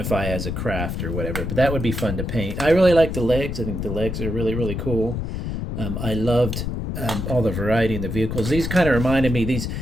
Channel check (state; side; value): noise; left; rumble, 3 dB below the sound